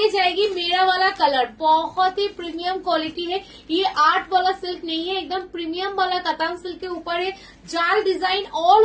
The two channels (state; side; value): identical; both; correlation 1.00